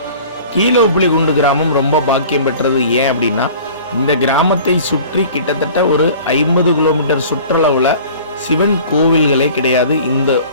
கீழே உப்பிலிகுண்டு கிராமம் ரொம்ப பாக்கியம் பெற்றது. ஏன் அப்படின்னா, இந்த கிராமத்தை சுற்றி கிட்டத்தட்ட ஒரு 50 கிலோமீட்டர் சுற்றளவில் சிவன் கோவில்களே கிடையாது, இந்த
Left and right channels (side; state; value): both; inverted; correlation -0.45